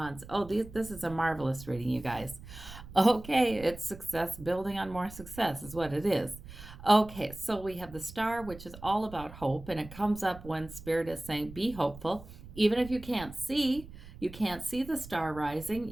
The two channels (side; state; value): right; noise; rumble, 16 dB below the sound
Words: Oh, this is a marvelous reading, you guys. Okay, it's success, building on more success is what it is. Okay, so we have the Star, which is all about hope, and it comes up when Spirit is saying, be hopeful. Even if you can't see the star rising,